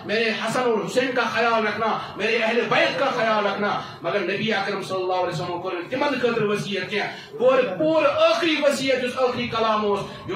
میرے حسن اور حسین کا خیال رکھنا، میرے اہل بیت کا خیال رکھنا. مگر نبی اکرم صلی اللہ علیہ وسلم کور تمن خاطر وصیت کی پور آخری وصیت اس آخری کلام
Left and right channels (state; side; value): identical; both; correlation 1.00